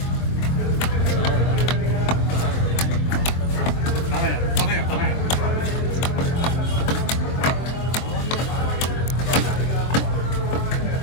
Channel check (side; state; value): right; late; 23 ms